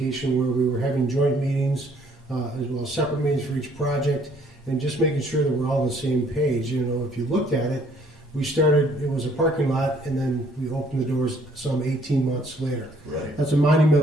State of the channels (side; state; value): both; normal; correlation 0.62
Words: where we were having joint meetings as well as separate meetings for each project, and just making sure that we're all on the same page. If you looked at it, we started, it was a parking lot, and then we opened the doors some 18 months later. Right. That's a